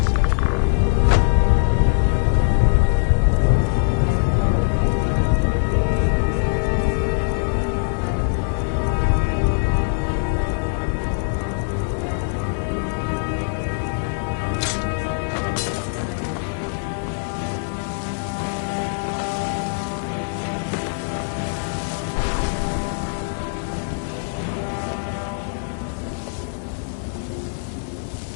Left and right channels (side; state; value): right; silent; 57 dB below the other